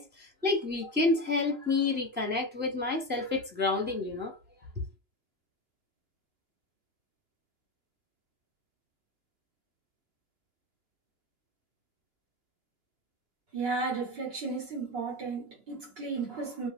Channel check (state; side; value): late; left; 2.9 ms